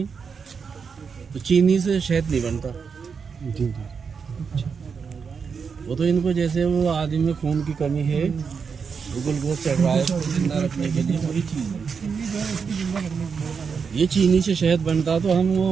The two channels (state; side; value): quieter; left; 5.9 dB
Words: तो चीनी से शहद नहीं बनता। जी जी। वो तो इनको जैसे वो आदमी में खून की कमी है, वो ग्लूकोज चढ़ रहा है, उसको जिंदा रखने के लिए वही चीज़ है। ये चीनी से शहद बनता तो हम